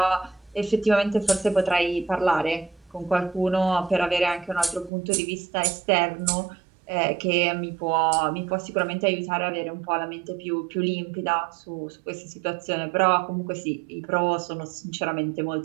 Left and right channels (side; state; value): left; drops out; at 4.9 s